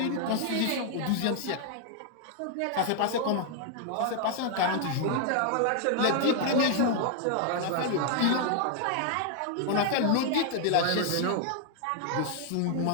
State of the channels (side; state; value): both; different; correlation 0.00